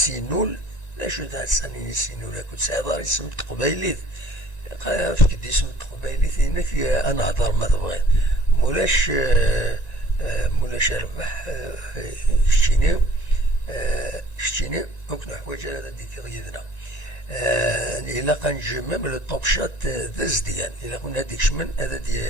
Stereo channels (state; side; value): late; right; 1.9 ms